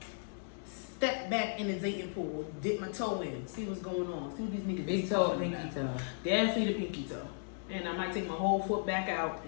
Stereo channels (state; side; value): silent; right; 54 dB below the other